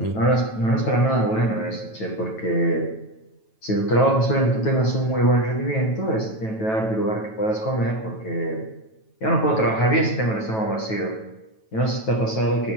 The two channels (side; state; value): right; late; 9.2 ms